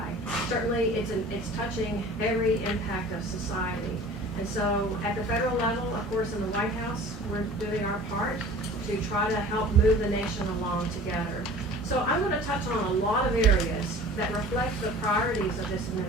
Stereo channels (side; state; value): both; normal; correlation 0.43